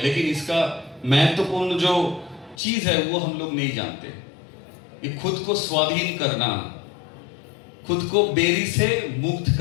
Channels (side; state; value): right; drops out; at 2.6 s